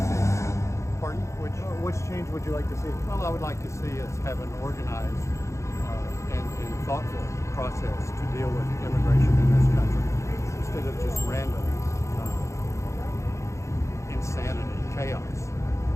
Pardon? Which change would you like to see? Well, I would like to see us have an organized and thoughtful process to deal with immigration in this country instead of just random insanity, chaos.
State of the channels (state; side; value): late; right; 0.14 ms